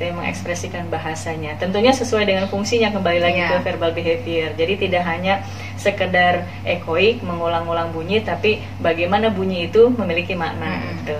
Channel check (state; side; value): identical; both; correlation 1.00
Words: ya, mengekspresikan bahasanya. Tentunya sesuai dengan fungsinya, kembali lagi ke verbal behavior. Jadi tidak hanya sekedar echoik, mengulang-ulang bunyi, tapi bagaimana bunyi itu memiliki makna gitu.